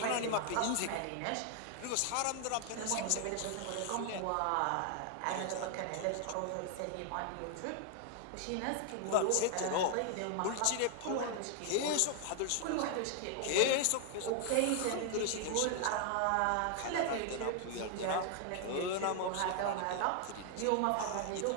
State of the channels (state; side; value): different; both; correlation 0.00